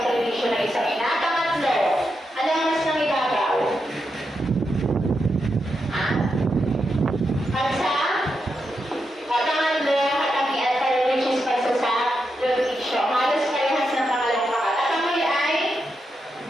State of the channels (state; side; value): normal; both; correlation 0.85